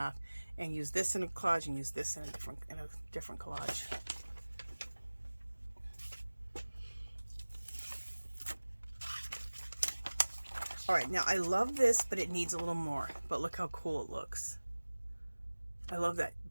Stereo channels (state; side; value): inverted; both; correlation -1.00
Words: and use this in a collage and use this in a different collage. All right, now I love this, but it needs a little more. But look how cool it looks. I love that